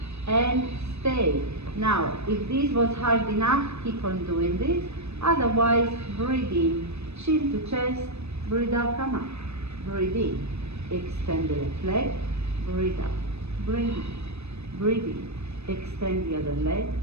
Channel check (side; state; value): left; late; 0.80 ms